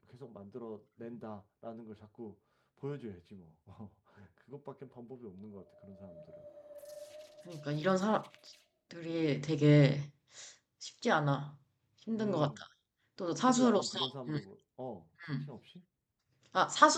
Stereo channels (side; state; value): both; identical; correlation 1.00